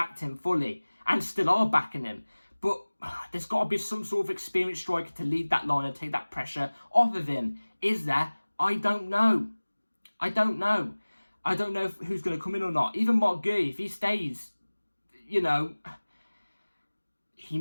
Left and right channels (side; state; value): both; inverted; correlation -1.00